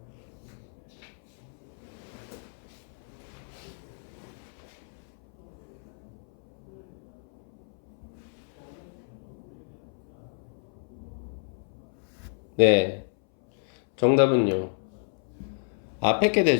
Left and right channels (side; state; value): right; silent; 57 dB below the other